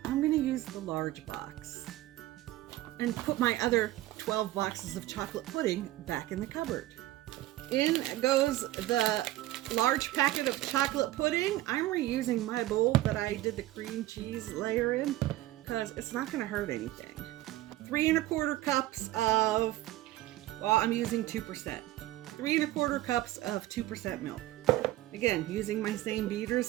I'm gonna use the large box and put my other 12 boxes of chocolate pudding back in the cupboard. In goes the large packet of chocolate pudding. I'm reusing my bowl that I did the cream cheese layer in because it's not gonna hurt anything. 3 1/4 cups of, well, I'm using 2%. 3 1/4 cups of 2% milk. Again, using my same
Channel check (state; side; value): quieter; left; 16.1 dB